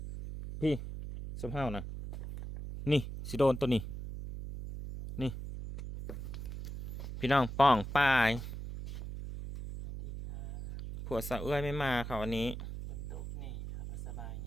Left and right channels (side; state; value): right; noise; hum, 8 dB below the sound